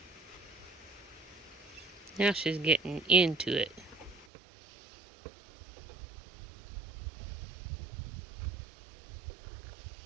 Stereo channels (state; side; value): drops out; left; at 4.2 s